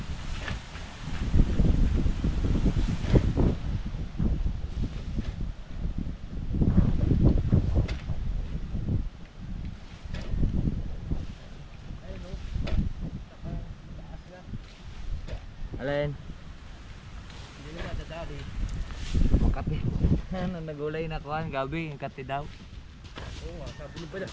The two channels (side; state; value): both; identical; correlation 1.00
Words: Alin? Hindi na dadali. Makati. Ano, nagulay na kuhan, gabi, yung kati daw. Oo nga, sabi mo pala.